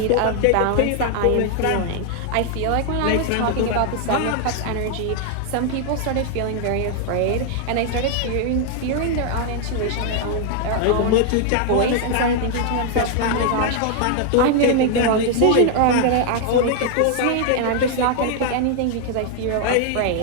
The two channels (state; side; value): different; both; correlation 0.00